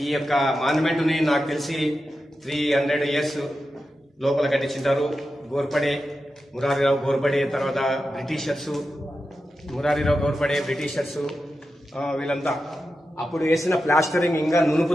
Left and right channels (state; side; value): normal; both; correlation 0.90